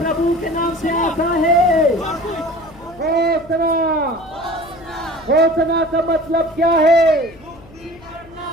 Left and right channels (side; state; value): left; noise; hum, 23 dB below the sound